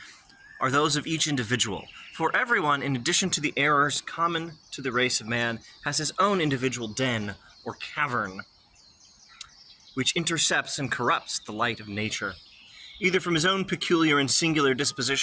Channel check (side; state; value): both; identical; correlation 1.00